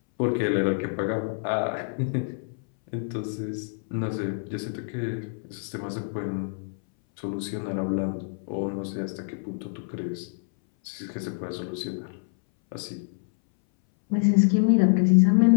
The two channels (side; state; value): right; silent; 60 dB below the other